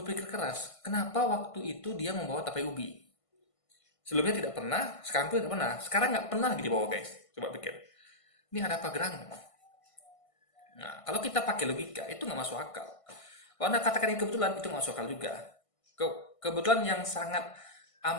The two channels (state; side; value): late; right; 1.5 ms